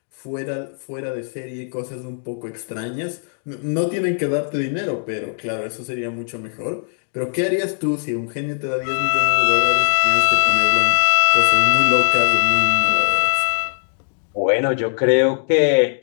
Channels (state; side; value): silent; right; 62 dB below the other